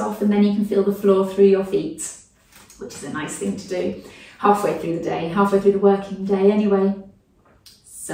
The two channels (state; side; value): identical; both; correlation 1.00